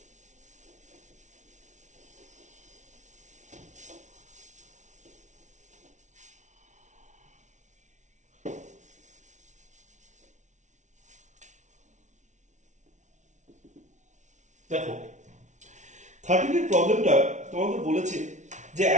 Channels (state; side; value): late; left; 0.35 ms